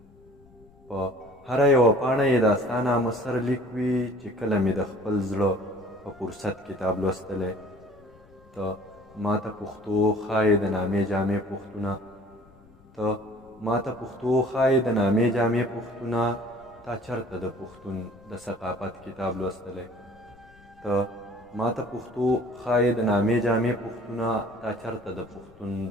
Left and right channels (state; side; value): noise; left; rumble, 26 dB below the sound